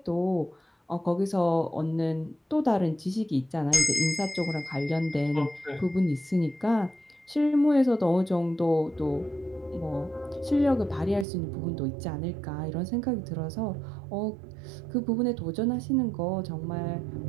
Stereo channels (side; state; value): left; drops out; at 11.2 s